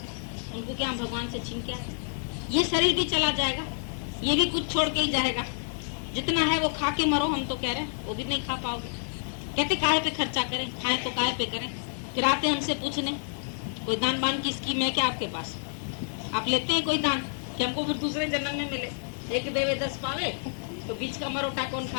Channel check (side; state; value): right; silent; 59 dB below the other